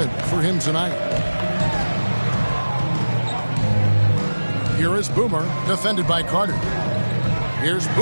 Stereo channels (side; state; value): both; inverted; correlation -1.00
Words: for him tonight. Here is Boomer, defended by Carter. Here's